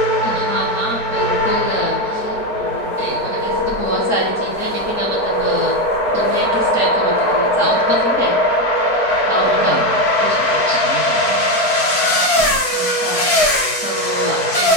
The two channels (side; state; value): right; late; 4.5 ms